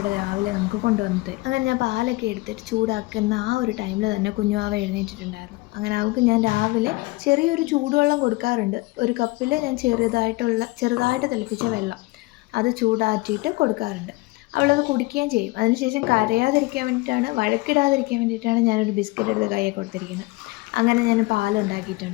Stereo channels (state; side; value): quieter; right; 22.9 dB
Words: രാവിലെ നമുക്ക് കൊണ്ടുവന്നിട്ട്. അങ്ങനെ ഞാൻ പാലൊക്കെ എടുത്തിട്ട് ചൂടാക്കുന്ന ആ ഒരു ടൈമിൽ തന്നെ കുഞ്ഞുവാവ എഴുന്നേറ്റിട്ടുണ്ടായിരുന്നു. അങ്ങനെ അവൾക്ക് ഞാൻ രാവിലെ ചെറിയൊരു ചൂടുവെള്ളം കൊടുക്കാറുണ്ട്. ഒരു കപ്പിൽ ഞാൻ ചെറുതായിട്ട് തിളപ്പിച്ച വെള്ളം അത് ചൂടാറ്റിയിട്ട് കൊടുക്കാറുണ്ട്. അവളത് കുടിക്കുകയും ചെയ്യും. അതിനുശേഷം കരയാതിരിക്കാൻ വേണ്ടിയിട്ടാണ്, വഴക്കിടാതിരിക്കാൻ വേണ്ടിയിട്ടാണ് ഞാനൊരു ബിസ്ക്കറ്റ് എടുത്ത് കയ്യിൽ കൊടുത്തിരിക്കുന്നത്. അങ്ങനെ ഞാൻ